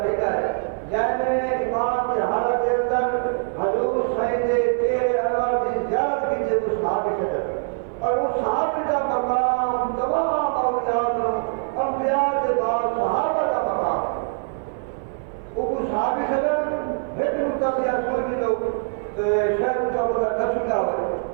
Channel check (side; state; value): left; silent; 57 dB below the other